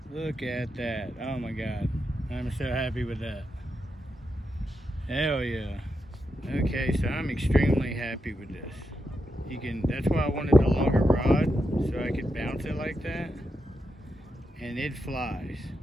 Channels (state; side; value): normal; both; correlation 0.85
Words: Look at that. Oh my God. I'm so happy with that. Hell yeah. Okay, so I'm extremely happy with this. That's why I wanted the longer rod, so I could bounce it like that. And it flies.